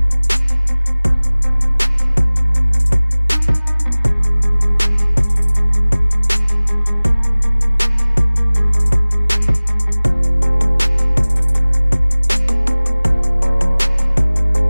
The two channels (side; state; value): both; inverted; correlation -1.00